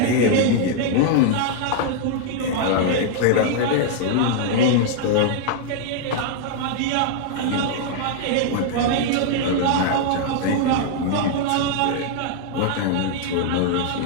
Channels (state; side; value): different; both; correlation 0.00